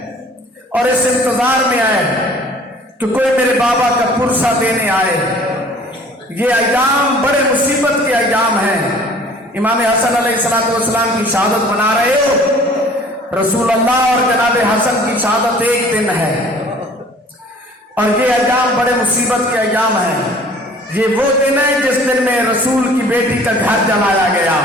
اور اس انتظار میں آئے کہ کوئی میرے بابا کا پرسہ دینے آئے. یہ ایام بڑے مصیبت کے ایام ہیں. امام حسن علیہ السلام کی شہادت منا رہے ہو. رسول اللہ اور جناب حسن کی شہادت ایک دن ہے اور یہ ایام بڑے مصیبت کے ایام ہیں. یہ وہ دن ہے جس دن میں رسول کی بیٹی کا گھر جلایا گیا.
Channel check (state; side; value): normal; both; correlation 0.51